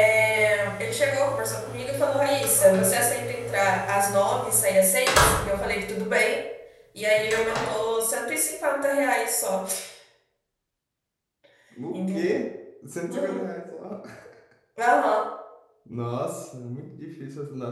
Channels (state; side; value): identical; both; correlation 1.00